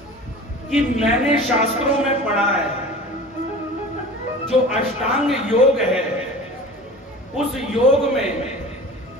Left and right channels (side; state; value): both; normal; correlation 0.38